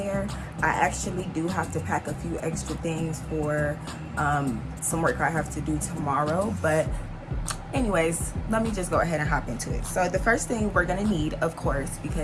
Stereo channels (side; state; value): both; identical; correlation 1.00